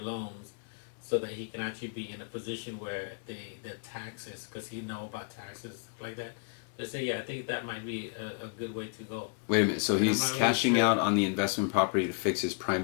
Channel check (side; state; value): right; quieter; 37.0 dB